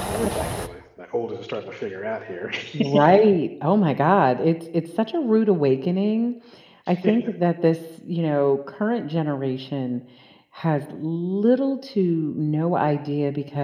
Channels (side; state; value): both; identical; correlation 1.00